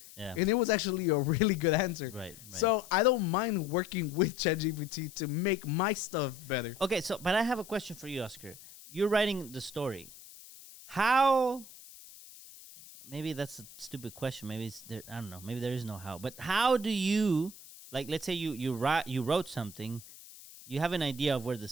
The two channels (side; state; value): left; noise; hiss, 19 dB below the sound